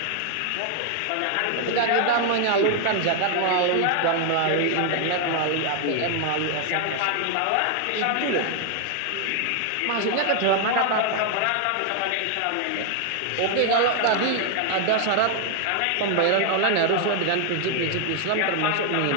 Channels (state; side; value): different; both; correlation 0.00